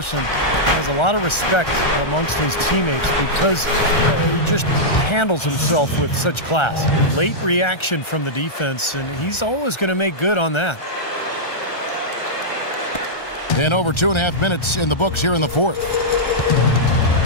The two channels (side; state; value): right; late; 1.3 ms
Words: Has a lot of respect amongst his teammates because he just handles himself with such class. Late reaction from the defense, and he's always going to make good on that. And over 2.5 minutes in the books here in the fourth.